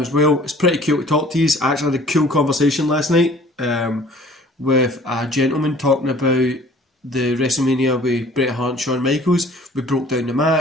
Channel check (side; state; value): both; normal; correlation 0.52